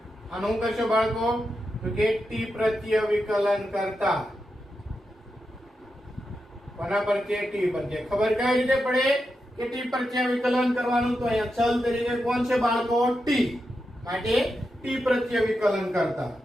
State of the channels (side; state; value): both; normal; correlation 0.88